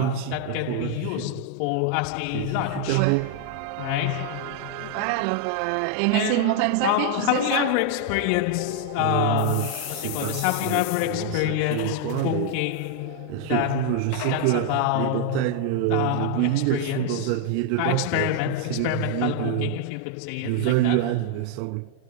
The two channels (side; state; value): both; different; correlation 0.00